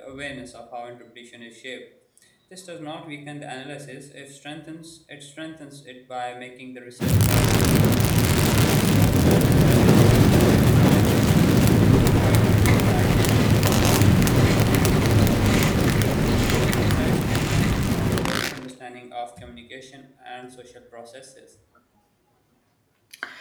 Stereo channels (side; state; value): both; identical; correlation 1.00